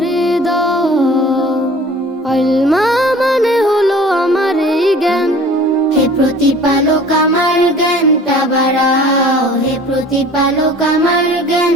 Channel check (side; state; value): both; normal; correlation 0.46